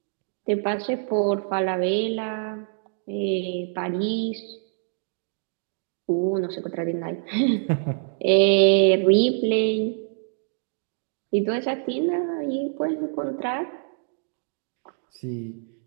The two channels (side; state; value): left; silent; digital silence